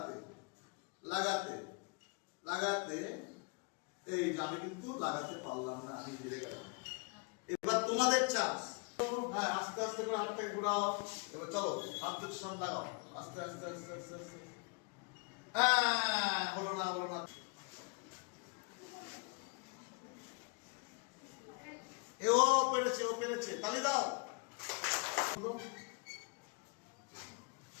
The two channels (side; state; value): right; quieter; 32.1 dB